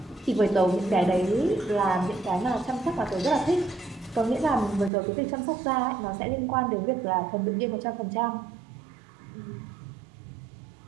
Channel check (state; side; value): drops out; left; at 4.9 s